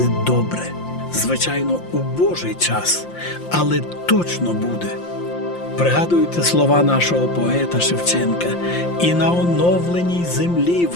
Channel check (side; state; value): right; late; 5.7 ms